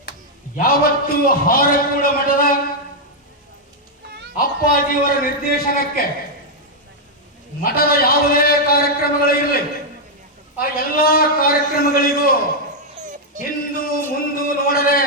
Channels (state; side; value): normal; both; correlation -0.02